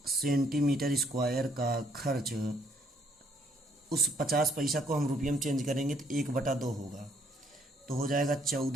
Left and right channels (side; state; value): both; normal; correlation 0.68